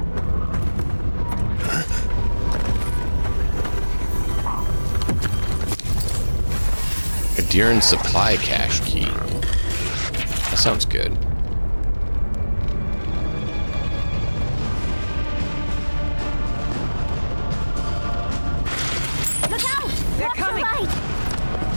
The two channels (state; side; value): inverted; both; correlation -1.00